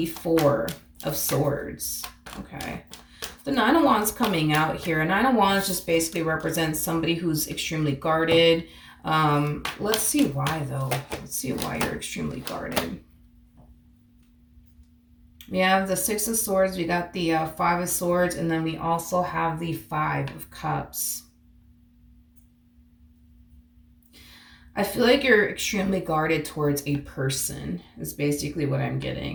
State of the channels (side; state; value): both; identical; correlation 1.00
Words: 4 of Swords, okay? The 9 of Wands coming out here. 9 of Wands just basically represents somebody who's extremely guarded. Let's see why, though. Let's see why you're extremely guarded. We have the 6 of Swords, we got the 5 of Swords, and then we also have the 5 of Cups. I feel like you're extremely guarded towards a person, is basically what I'm